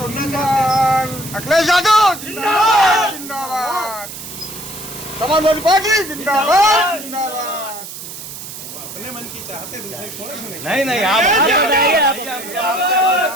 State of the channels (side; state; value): right; noise; hiss, 11 dB below the sound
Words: अखिलेश यादव जिंदाबाद, जिंदाबाद, समाजवादी पार्टी जिंदाबाद, जिंदाबाद। अपने मन की चाहते दूसरे थोड़े सुनेंगे। नहीं